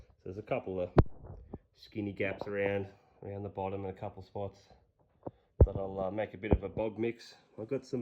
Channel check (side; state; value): both; identical; correlation 1.00